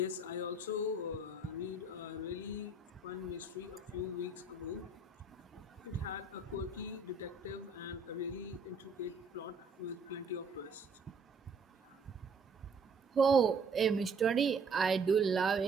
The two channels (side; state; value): left; quieter; 3.5 dB